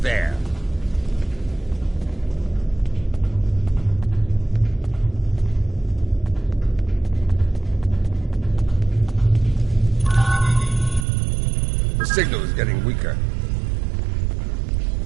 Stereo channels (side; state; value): left; drops out; at 11.1 s